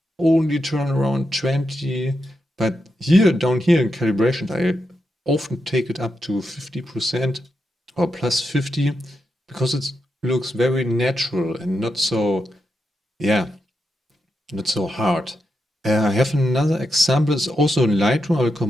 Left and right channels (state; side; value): normal; both; correlation 0.85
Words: only turn around 20. But down here in calibration, I often take it up to 50% or plus 50 because it looks very natural and not so hard. I have another example. It's also in Lightroom. I will